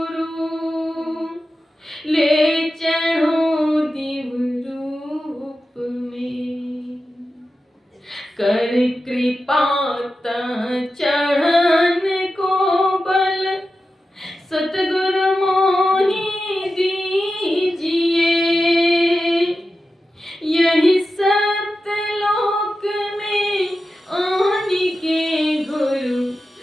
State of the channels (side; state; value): both; normal; correlation 0.92